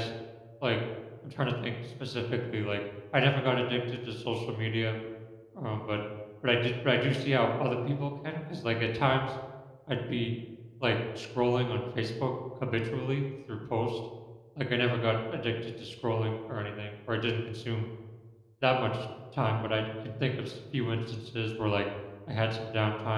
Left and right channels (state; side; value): identical; both; correlation 1.00